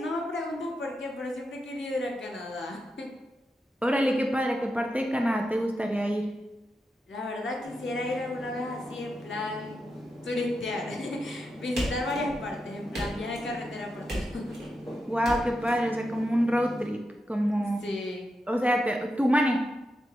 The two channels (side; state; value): both; normal; correlation 0.86